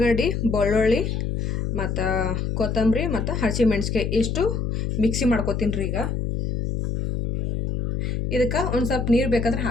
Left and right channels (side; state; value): left; noise; hum, 1 dB below the sound